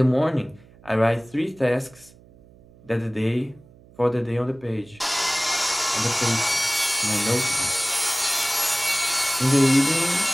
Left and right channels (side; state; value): right; noise; hum, 26 dB below the sound